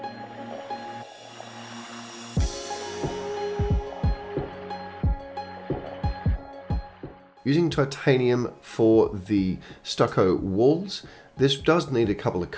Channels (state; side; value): identical; both; correlation 1.00